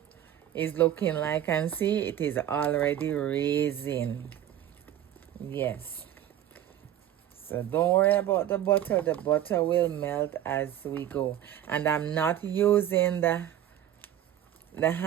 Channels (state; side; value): quieter; left; 11.4 dB